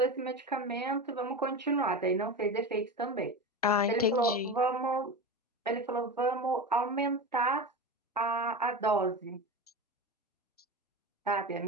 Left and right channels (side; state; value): both; normal; correlation 0.25